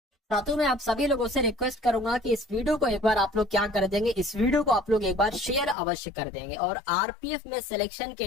साथियों, मैं आप सभी लोगों से रिक्वेस्ट करूंगा कि इस वीडियो को एक बार आप लोग क्या कर देंगे, इस वीडियो को आप लोग एक बार शेयर अवश्य कर देंगे। और आरपीएफ में सिलेक्शन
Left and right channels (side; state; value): right; drops out; at 5.8 s